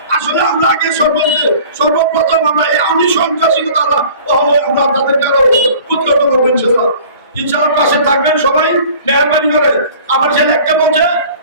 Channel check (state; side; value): inverted; both; correlation -0.46